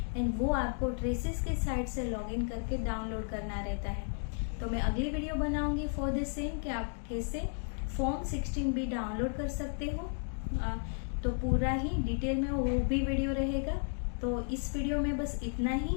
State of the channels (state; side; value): silent; right; 55 dB below the other